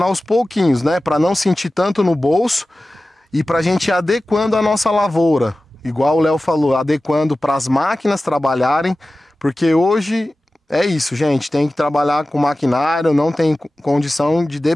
aos pouquinhos, né, para não sentir tanto no bolso e para a gente ir adequando a nossa lavoura. Igual o Léo falou, adequando para as máquinas trabalharem, porque hoje é isso, gente, tem que trabalhar com maquinário, não tem condição de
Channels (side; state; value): both; normal; correlation 0.96